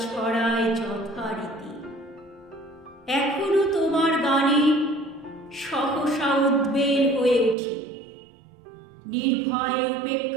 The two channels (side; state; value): left; drops out; at 7.6 s